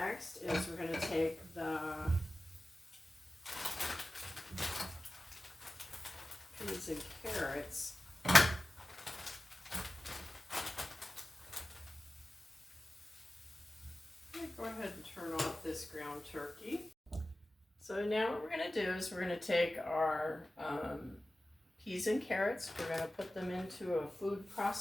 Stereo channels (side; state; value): both; normal; correlation 0.96